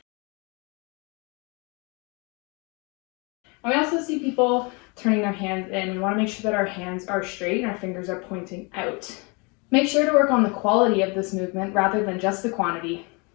And we also see people turning their hands in. We want to make sure that our hands are straight and our fingers are pointing out. Make sure to work on the quality of this movement rather than just the quantity.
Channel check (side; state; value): right; quieter; 30.5 dB